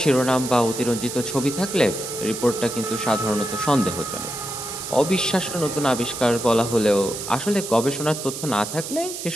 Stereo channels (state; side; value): noise; right; hiss, 8 dB below the sound